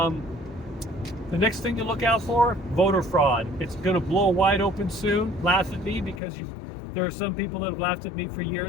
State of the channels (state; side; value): drops out; right; at 6.2 s